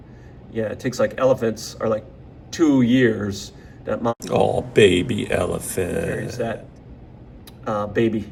Yeah, it takes elephants are 2 years That mom Oh, baby carries elephant. that baby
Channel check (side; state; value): both; identical; correlation 1.00